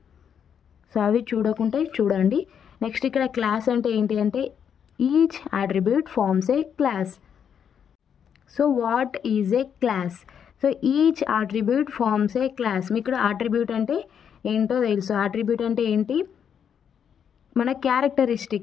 సో అవి చూడకుంటే చూడండి. నెక్స్ట్ ఇక్కడ క్లాస్ అంటే ఏంటి అంటే each attribute forms a class. So what is a class? So each attribute forms a class. మీకు ఇక్కడ అట్రిబ్యూట్ అంటే ఏంటో తెలుసు. అట్రిబ్యూట్ అంటే ఏంటి? మన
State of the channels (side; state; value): right; quieter; 8.0 dB